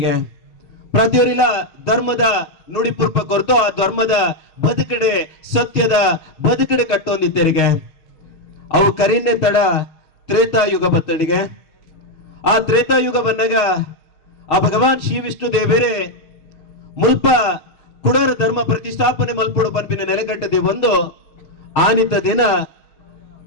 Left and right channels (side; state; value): right; late; 6.4 ms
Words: ಪ್ರತಿಯೊರಿಲ ಧರ್ಮದ ನುಡಿ ಪುರ್ಪ ಕೊರತು ಆ ಧರ್ಮದ ಬದುಕಡೆ ಸತ್ಯದ ಬದುಕಡೆ ಕಟ್ಟೊಂದಿದ್ದರಿಗೆ ಅವು ಕರಿನ್ನೆ ತಡ ತ್ರೇತಾಯುಗ ಬತ್ತಡಿಗೆ ಆ ತ್ರೇತಾಯುಗ ಬಂದಾಗ ಆ ಭಗವಾನ್ ಶ್ರೀ ವಿಷ್ಣು ದೇವರೇ ಮುಲ್ಪ ಕುಡರ ಧರ್ಮ ಪ್ರತಿಷ್ಠಾಪನೆ ಮಲ್ಪುಡು ಪಂಪಿನ ನೆಲೆಗಟ್ಟದೆ ಒಂದು ಆನಿತ ದಿನ